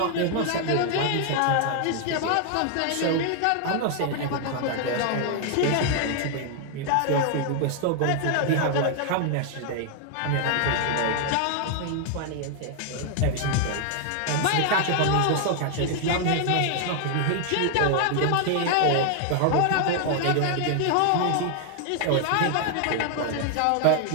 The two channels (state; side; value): different; both; correlation 0.00